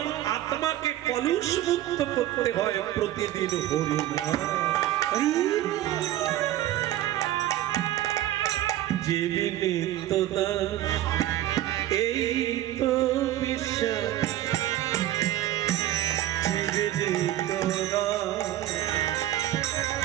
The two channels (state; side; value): quieter; left; 13.6 dB